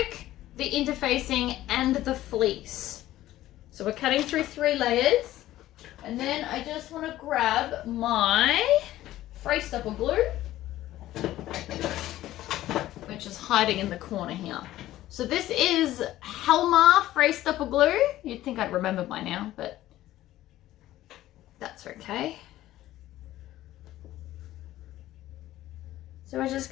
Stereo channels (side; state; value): right; quieter; 14.6 dB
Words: the interfacing, and the fleece. So we're cutting through 3 layers, and then I just want to grab my fray stopper glue, which is hiding in the corner here. So this is Helmar fray stopper glue. You'd think I'd remember by now, but that's okay. So we're just